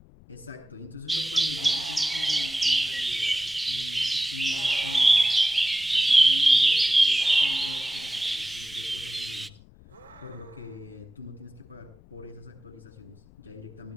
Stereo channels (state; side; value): noise; left; rumble, 25 dB below the sound